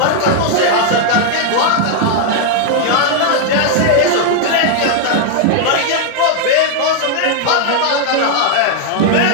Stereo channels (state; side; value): different; both; correlation 0.00